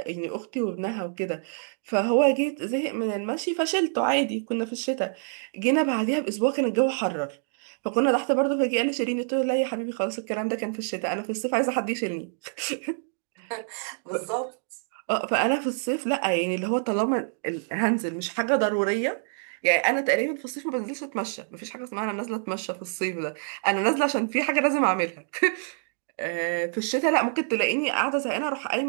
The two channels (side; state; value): left; silent; digital silence